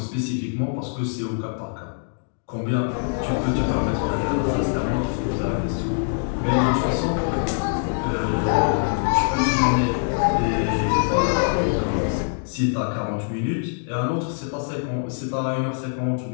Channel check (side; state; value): right; silent; digital silence